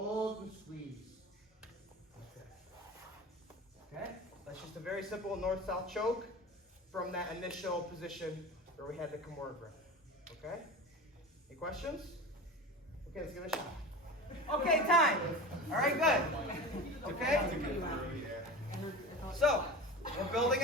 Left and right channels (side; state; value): both; normal; correlation 0.32